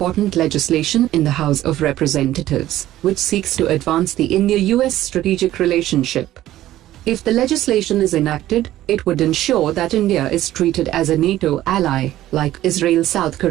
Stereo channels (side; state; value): left; quieter; 14.1 dB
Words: legislation in the House of Representatives, which seeks to advance the India-US strategic relationship. If the legislation is enacted, it would ensure that India is treated as a NATO ally, like Israel, South